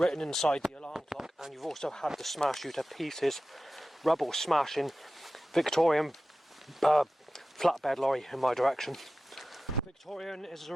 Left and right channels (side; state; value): both; normal; correlation 0.94